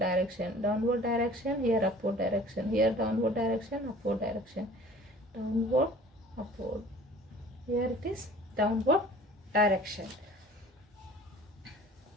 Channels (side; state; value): both; normal; correlation 0.47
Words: Downward direction, here upward direction. Here downward direction, upward direction. Downward, upward. Here it is downward direction.